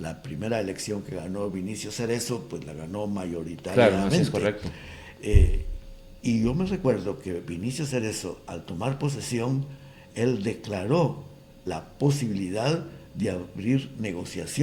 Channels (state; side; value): identical; both; correlation 1.00